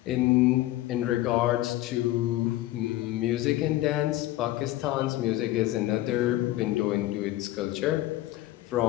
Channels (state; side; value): quieter; right; 15.8 dB